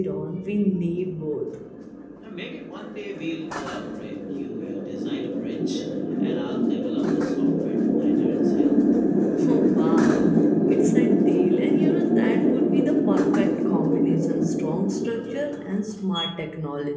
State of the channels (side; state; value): both; identical; correlation 1.00